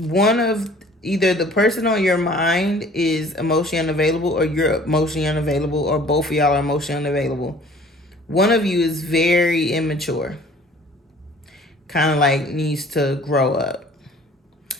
of either the person on your mind is emotionally unavailable, or you're emotionally unavailable, or both of y'all are emotionally unavailable. One of you is very immature, kind of like needs to grow up.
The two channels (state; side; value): normal; both; correlation 0.51